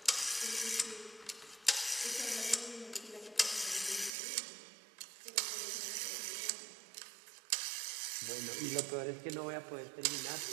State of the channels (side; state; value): left; drops out; at 4.1 s